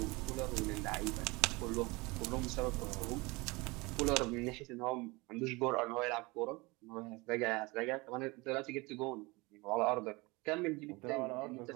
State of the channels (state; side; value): quieter; left; 24.4 dB